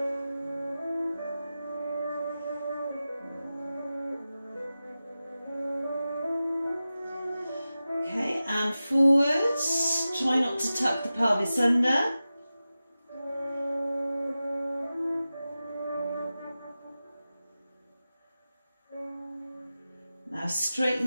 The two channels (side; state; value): both; inverted; correlation -0.94